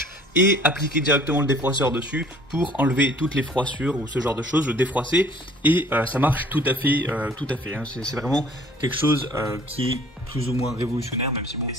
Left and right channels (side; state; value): both; normal; correlation 0.53